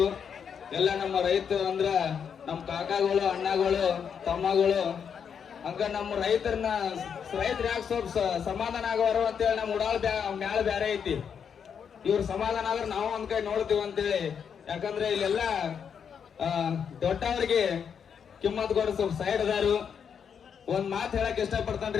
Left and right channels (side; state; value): right; quieter; 7.3 dB